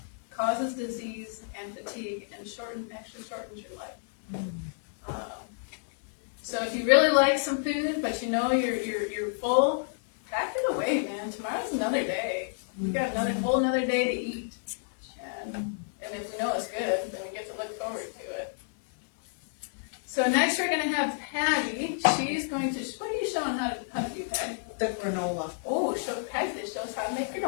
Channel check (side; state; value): right; silent; digital silence